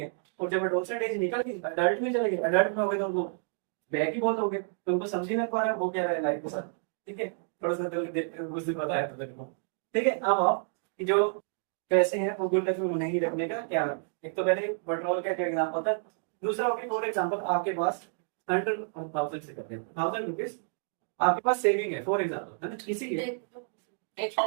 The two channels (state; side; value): silent; left; digital silence